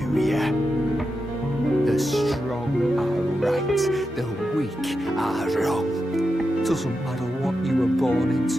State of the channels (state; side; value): normal; both; correlation 0.88